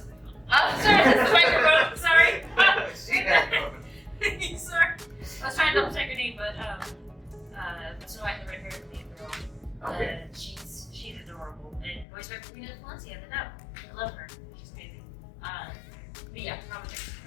not my phone. Oh, sorry, that's the microphone. Sorry. She has Sorry. I was trying to double check her name, but Snow White and the Red Hair is the main girl. Okay. She's adorable. And voiced by Karina Valencia, the dub. I love her. She's amazing. But yeah, probably.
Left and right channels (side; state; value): right; drops out; at 12.1 s